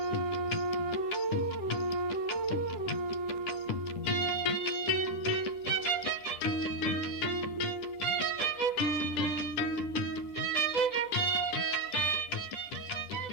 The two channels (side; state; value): right; late; 10 ms